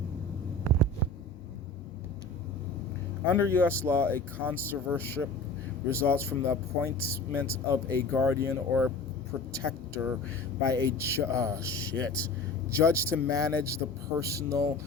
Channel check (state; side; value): quieter; right; 3.3 dB